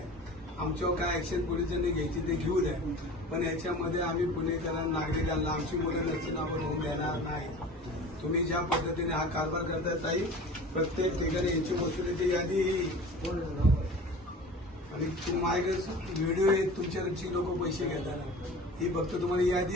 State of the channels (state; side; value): normal; both; correlation 0.39